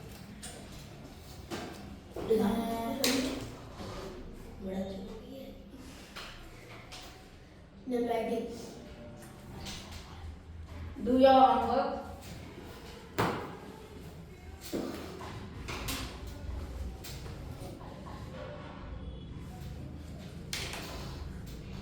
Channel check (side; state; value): both; identical; correlation 1.00